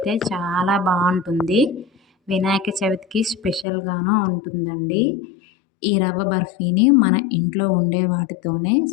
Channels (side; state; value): right; drops out; at 3.7 s